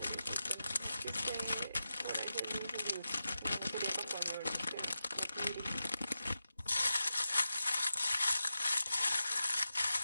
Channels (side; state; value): both; inverted; correlation -0.91